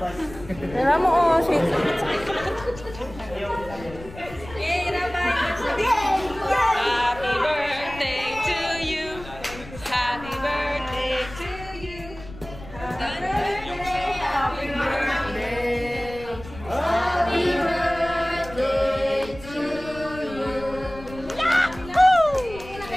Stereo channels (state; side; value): noise; left; rumble, 16 dB below the sound